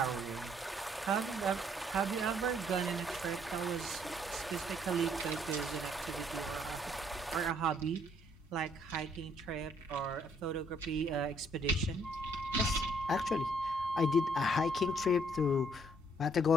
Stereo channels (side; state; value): both; normal; correlation 0.66